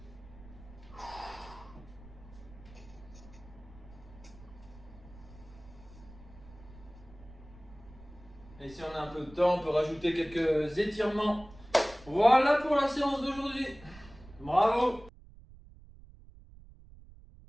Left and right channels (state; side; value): noise; right; rumble, 20 dB below the sound